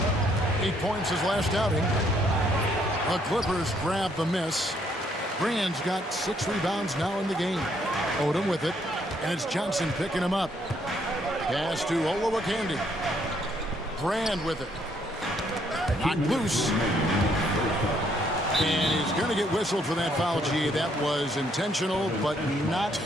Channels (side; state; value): both; normal; correlation 0.69